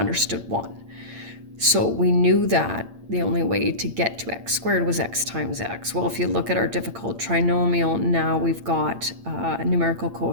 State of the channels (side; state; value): left; late; 8.8 ms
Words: 1. So we knew that the only way to get to x squared was x times x. Well, if you look at our difficult trinomial, now we've got a numerical